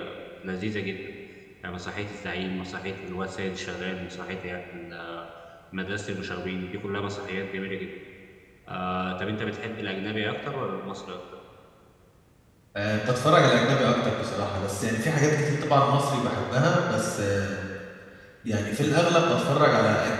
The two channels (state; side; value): identical; both; correlation 1.00